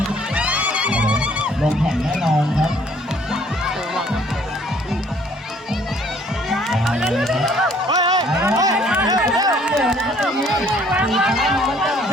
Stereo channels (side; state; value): both; normal; correlation 0.60